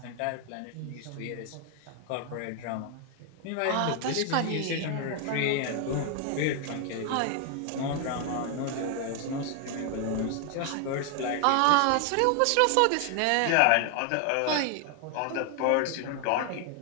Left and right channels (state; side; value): different; both; correlation 0.00